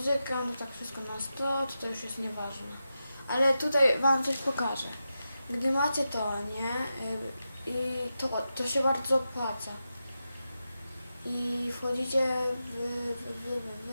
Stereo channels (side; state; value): both; inverted; correlation -0.90